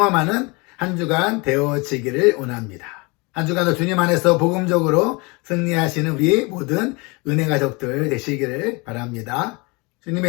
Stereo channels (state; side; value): quieter; right; 27.6 dB